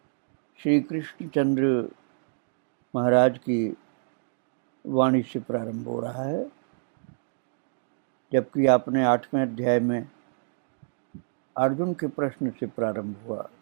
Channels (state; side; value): silent; left; digital silence